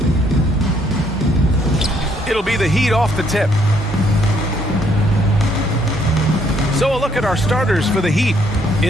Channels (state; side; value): normal; both; correlation 0.68